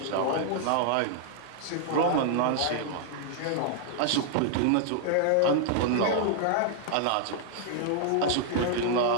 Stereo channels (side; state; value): both; different; correlation 0.00